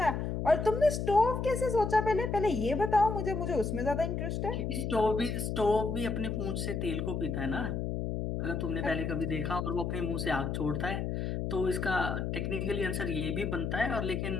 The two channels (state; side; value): noise; left; hum, 2 dB below the sound